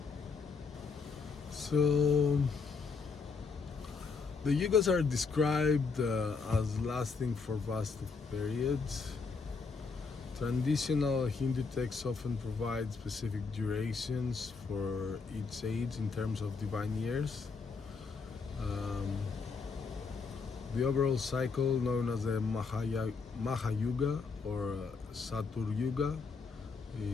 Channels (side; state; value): right; quieter; 4.8 dB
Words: So the Yugas are described as lasting for vast periods. Traditional Hindu texts often provide specific durations for each age in terms of divine years. The overall cycle, known as the Mahayuga or Satur Yuga,